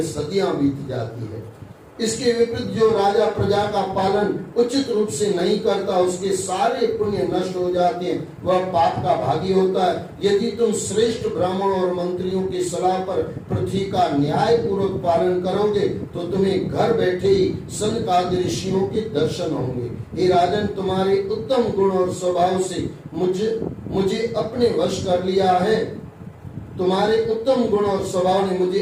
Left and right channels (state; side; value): identical; both; correlation 1.00